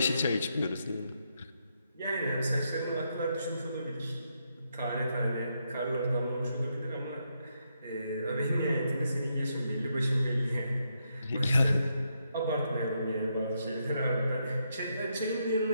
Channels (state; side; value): inverted; both; correlation -0.80